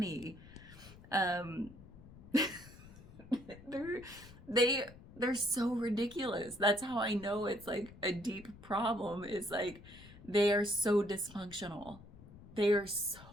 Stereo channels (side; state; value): left; noise; rumble, 19 dB below the sound